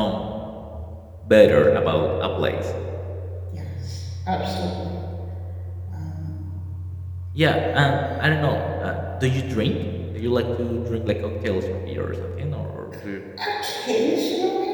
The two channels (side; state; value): both; identical; correlation 1.00